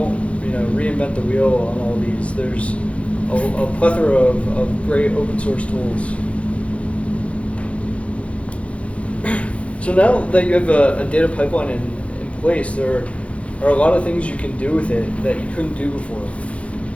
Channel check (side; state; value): right; late; 0.062 ms